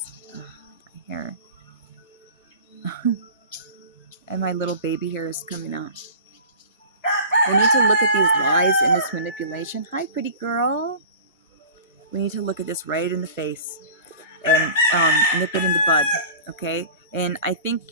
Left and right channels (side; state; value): both; inverted; correlation -0.39